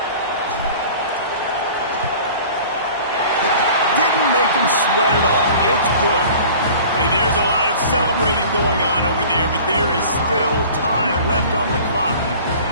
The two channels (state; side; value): inverted; both; correlation -0.44